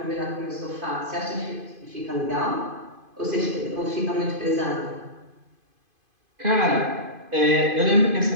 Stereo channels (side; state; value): left; late; 2.5 ms